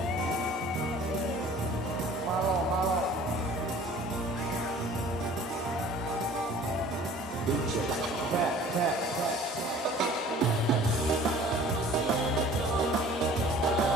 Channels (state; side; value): normal; both; correlation 0.48